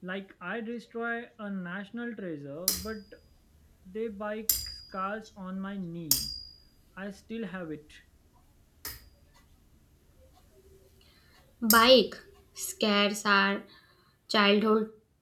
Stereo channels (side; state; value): both; identical; correlation 1.00